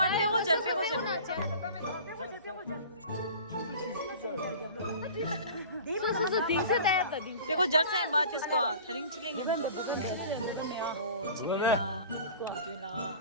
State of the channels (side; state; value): both; inverted; correlation -0.41